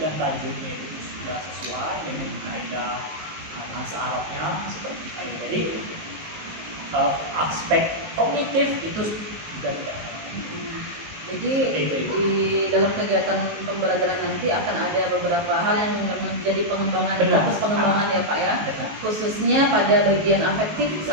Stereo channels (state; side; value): late; left; 19 ms